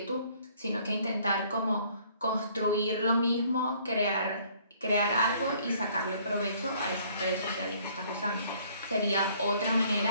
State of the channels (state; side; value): inverted; both; correlation -0.60